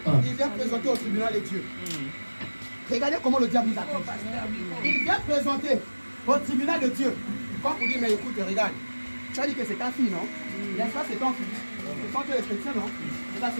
il vient présenter au tribunal de Dieu. Regardez comment le diable nous accuse. Il vient présenter au tribunal de Dieu. Quand vous dites, mais écoute, regarde, tu as dit que c'est ta fille, non? N'est-ce pas, c'est ton fils? Ce sont que les chrétiens, non? C'est ça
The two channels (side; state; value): both; inverted; correlation -1.00